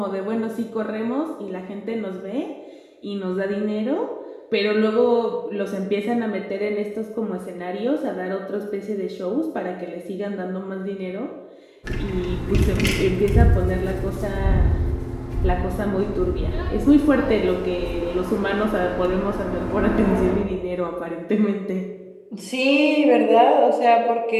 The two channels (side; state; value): both; identical; correlation 1.00